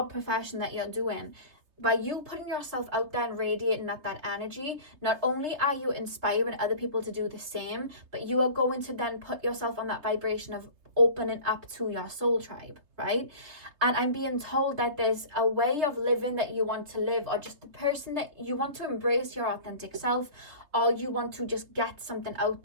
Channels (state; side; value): late; left; 3.3 ms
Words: profession that you're doing, by you putting yourself out there and radiating that energy, not only are you inspiring other people to do the same, but you are going to then put yourself on that vibration of opening up to your soul tribe, right? And I'm being told that there's a way of living that you want to live, or just the person that you want to embrace your authentic self, or you want to just get something out